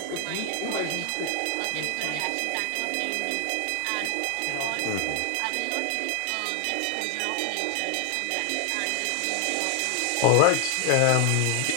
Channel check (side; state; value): both; different; correlation 0.00